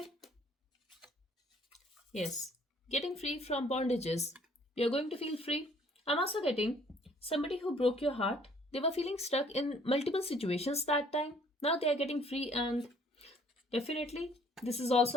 Yes. Getting free from bondages. You're going to feel free. I'm also getting somebody who broke your heart. They were feeling stuck in multiple situations that time. Now they are getting free, and definitely this is also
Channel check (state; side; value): normal; both; correlation 0.59